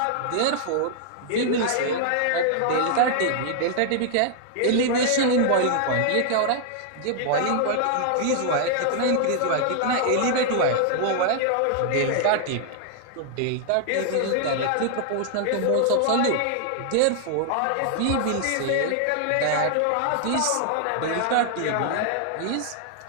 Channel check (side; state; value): both; different; correlation 0.00